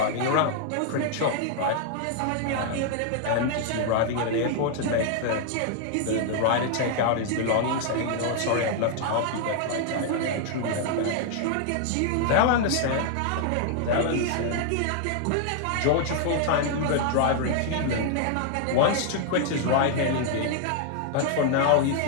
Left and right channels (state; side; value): different; both; correlation 0.00